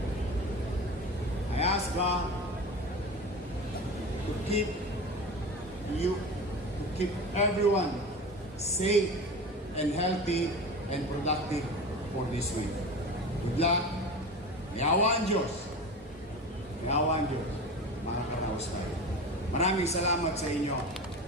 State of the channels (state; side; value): normal; both; correlation 0.30